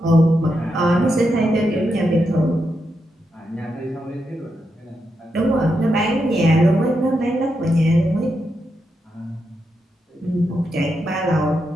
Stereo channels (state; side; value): normal; both; correlation 0.84